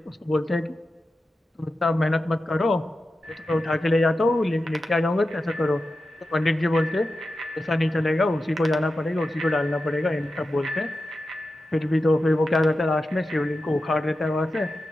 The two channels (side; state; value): both; normal; correlation 0.92